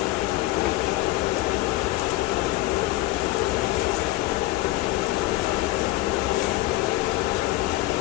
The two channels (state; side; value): quieter; right; 17.5 dB